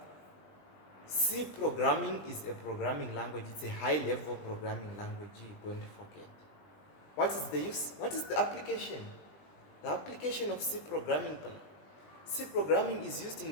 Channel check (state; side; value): late; right; 20 ms